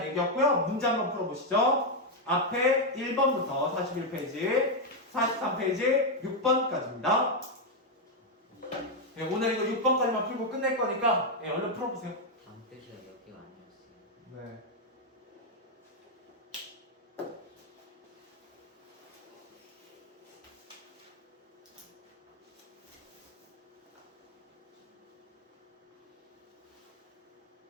얘기였고요. 문제 한번 풀어보시죠. 앞에 1번부터 41페이지, 43페이지, 6번까지입니다. 오늘 이거 6번까지만 풀고 끝낼 거니까 얼른 풀어보세요. 다음 페이지가 몇 개가 아니었어요. 네.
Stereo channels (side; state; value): both; normal; correlation 0.02